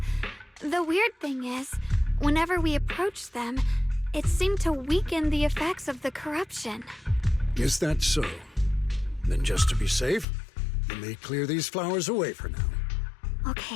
The weird thing is, whenever we approached them, it seemed to weaken the effects of the corruption. Is that so? Then just to be safe, you may clear these flowers away for now.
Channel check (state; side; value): drops out; right; at 10.2 s